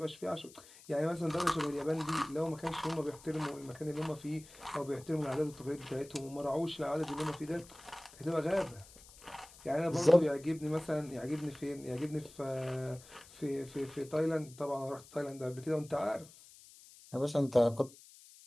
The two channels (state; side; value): noise; left; hiss, 21 dB below the sound